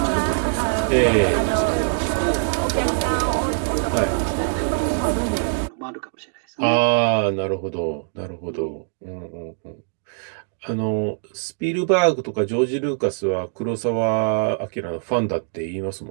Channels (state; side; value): silent; left; digital silence